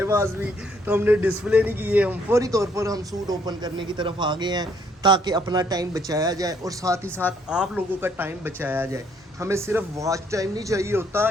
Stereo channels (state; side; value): normal; both; correlation 0.67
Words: पास भी, तो हमने डिस्प्ले नहीं किए। हम फौरी तौर पर हम सूट ओपन करने की तरफ आ गए हैं ताकि अपना टाइम बचाया जाए और साथ ही साथ आप लोगों का टाइम बचाया जाए। हमें सिर्फ वॉच टाइम नहीं चाहिए होता